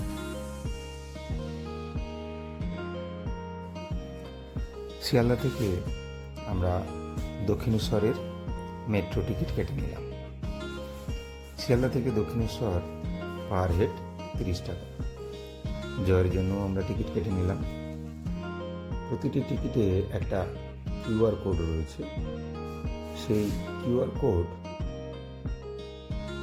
শিয়ালদা থেকে আমরা দক্ষিণেশ্বরের মেট্রো টিকিট কেটে নিলাম। শিয়ালদা থেকে দক্ষিণেশ্বর পার হেড 30 টাকা। জয়ের জন্য আমরা টিকিট কেটে নিলাম। প্রতিটি টিকিটে একটা কিউআর কোড রয়েছে। সেই কিউআর কোড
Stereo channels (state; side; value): identical; both; correlation 1.00